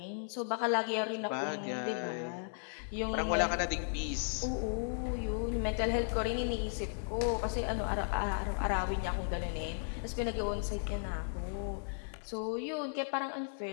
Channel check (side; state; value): right; silent; 54 dB below the other